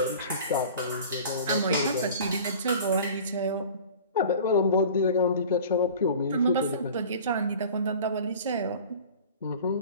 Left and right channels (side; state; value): both; inverted; correlation -0.42